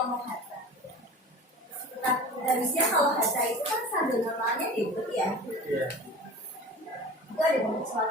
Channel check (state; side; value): normal; both; correlation 0.38